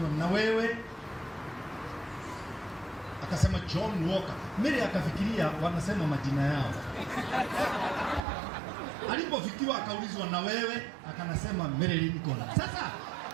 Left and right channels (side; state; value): left; drops out; at 8.2 s